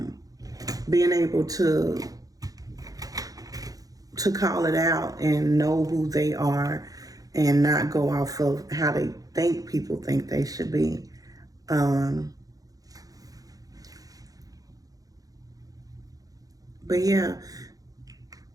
being able to call it out and know who they are and not go off of how they think people think they should be. But yeah,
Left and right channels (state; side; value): late; left; 0.17 ms